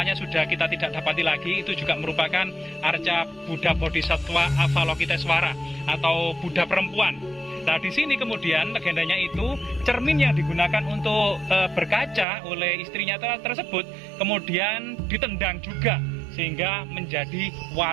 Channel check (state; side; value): drops out; left; at 12.2 s